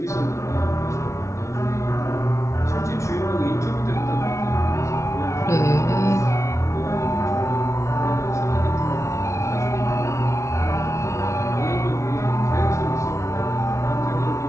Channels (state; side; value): late; right; 0.14 ms